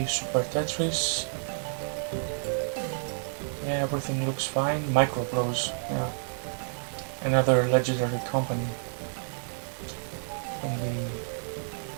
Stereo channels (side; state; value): left; silent; digital silence